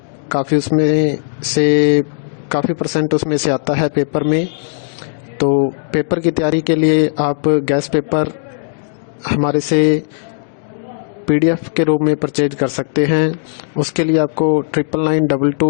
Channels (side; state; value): right; silent; digital silence